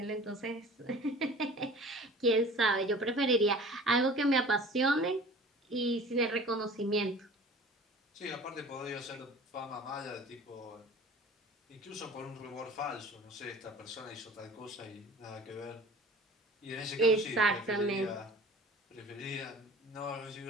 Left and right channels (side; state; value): both; normal; correlation 0.44